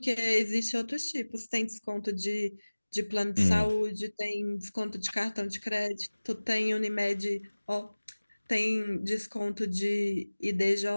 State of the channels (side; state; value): both; inverted; correlation -1.00